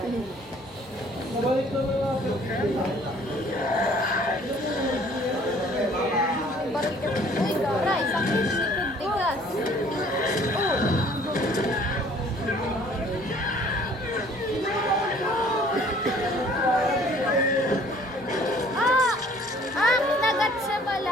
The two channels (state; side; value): normal; both; correlation 0.56